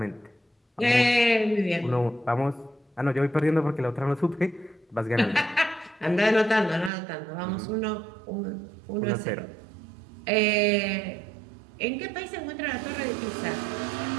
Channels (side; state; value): left; drops out; at 6.9 s